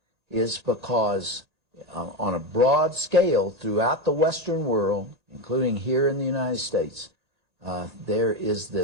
is because on a broad scale throughout the Western world, including here in the United States, there is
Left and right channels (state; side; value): late; left; 1.8 ms